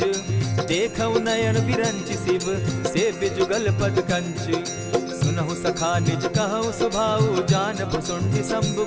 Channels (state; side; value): identical; both; correlation 1.00